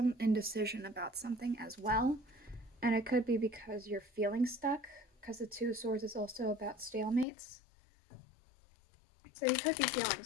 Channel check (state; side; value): drops out; right; at 7.2 s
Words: indecision about something as well. And it could be because you're feeling stuck, because the Two of Swords is also about stalemates. So you could be feeling